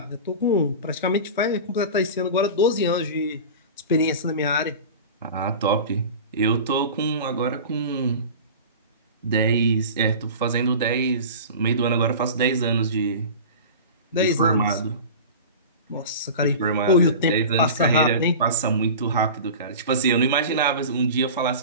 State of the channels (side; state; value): both; inverted; correlation -0.33